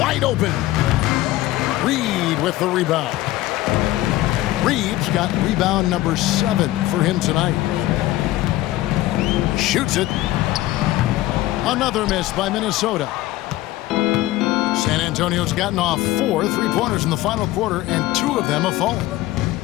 open. Reed with the rebound. Reeves got rebound number 7 for him tonight. Shoots it. Another miss by Minnesota. San Antonio's gotten off 4 3-pointers in the final quarter, and 2 of them have fallen.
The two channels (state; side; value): quieter; right; 16.4 dB